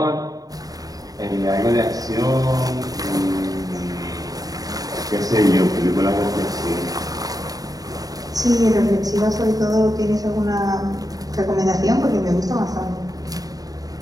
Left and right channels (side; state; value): left; late; 0.18 ms